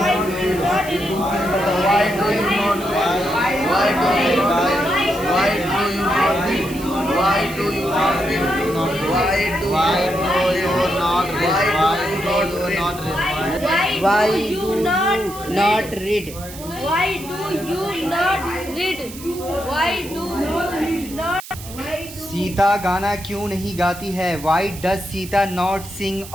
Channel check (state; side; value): noise; right; hiss, 15 dB below the sound